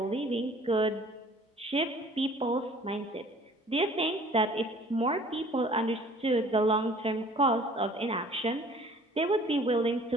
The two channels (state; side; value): normal; both; correlation 0.51